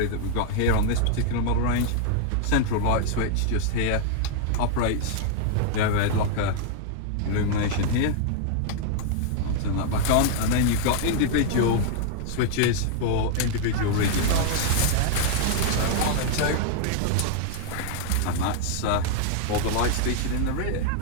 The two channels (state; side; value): different; both; correlation 0.00